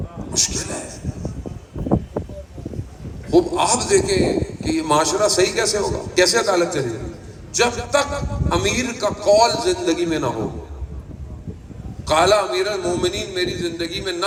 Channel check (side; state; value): both; identical; correlation 1.00